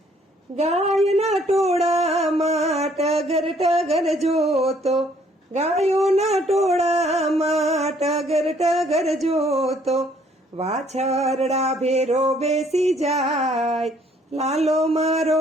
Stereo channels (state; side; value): normal; both; correlation 0.63